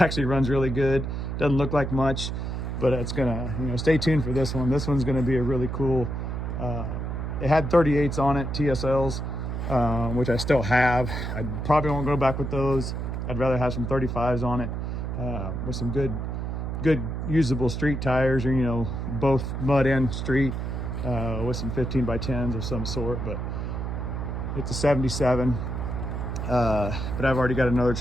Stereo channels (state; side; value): noise; right; hum, 3 dB below the sound